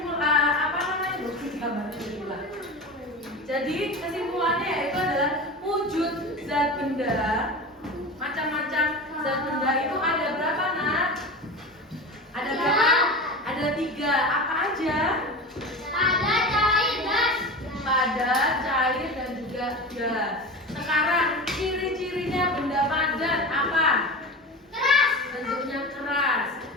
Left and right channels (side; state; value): both; normal; correlation 0.28